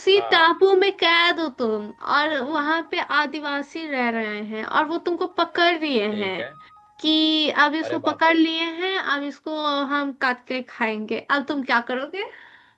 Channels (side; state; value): both; identical; correlation 1.00